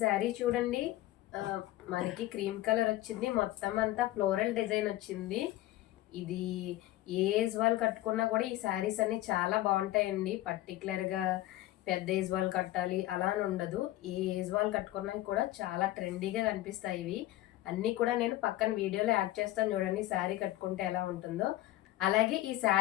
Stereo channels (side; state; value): right; quieter; 15.7 dB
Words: చూడండి, మనకి క్రీమ్ కలర్ వచ్చింది, మొత్తం అంతా ఫ్లోరల్ డిజైన్ వచ్చింది. ఇది ఏ ఏజ్ వాళ్ళు కట్టుకున్నా కూడా ఈ శారీస్ అన్ని చాలా బాగుంటాయండి. పర్టికులర్గా పెద్ద ఏజ్ వాళ్ళు కట్టాలి అలా అని ఉండదు, ఏ ఏజ్ వాళ్ళు కట్టుకున్నా కూడా చాలా ట్రెండీగా కనిపిస్తాయి. ఇవి అన్నీ కూడా నేను పక్కన వీడియోలో యాడ్ చేస్తాను, చూడండి శారీ కట్టుకుంటే ఎలా ఉంటుందో. అలాగే ఈ